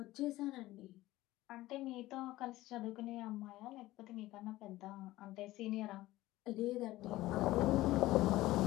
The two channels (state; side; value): quieter; right; 17.1 dB